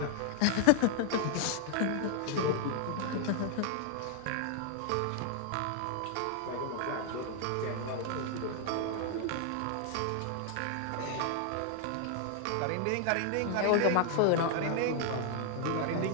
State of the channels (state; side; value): different; both; correlation 0.00